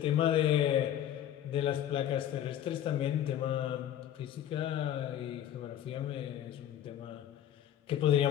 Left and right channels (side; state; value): right; quieter; 11.1 dB